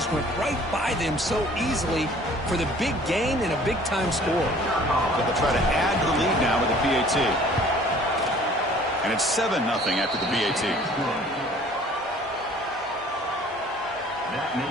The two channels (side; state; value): both; normal; correlation 0.52